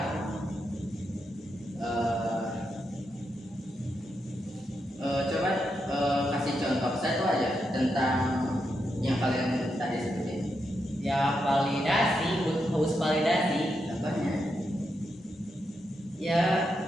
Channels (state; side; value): normal; both; correlation 0.84